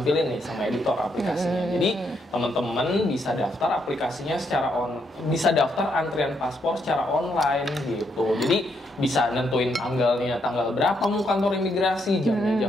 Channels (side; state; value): both; normal; correlation 0.77